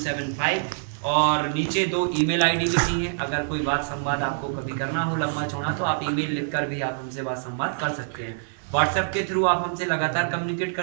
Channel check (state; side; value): silent; left; digital silence